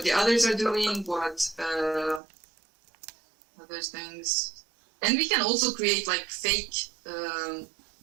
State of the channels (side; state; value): left; drops out; at 2.2 s